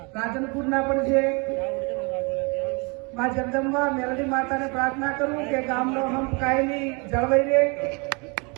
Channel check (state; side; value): quieter; left; 30.8 dB